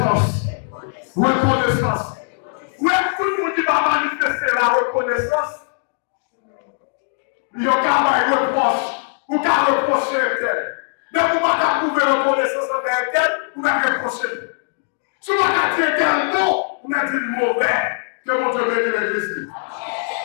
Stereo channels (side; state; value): right; silent; digital silence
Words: Reconnaissance. Où est-ce que tout le monde qui va manifester la reconnaissance? Il y a un reproche. Ou qu'à reprocher tel. Mais vous ne pouvez pas trouver reconnaissance envers tel, vous n'avez reproché. Si vous avez dit tel mot, vous avez dit le mauvais. Que mon Dieu bénisse l'église.